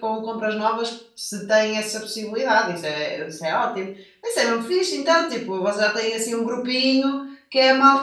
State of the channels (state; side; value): identical; both; correlation 1.00